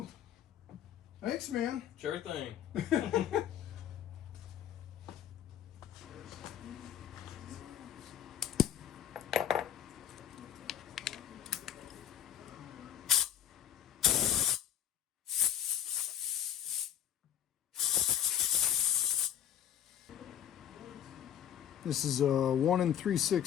Thanks, man. Sure thing. This is a 1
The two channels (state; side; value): quieter; right; 10.1 dB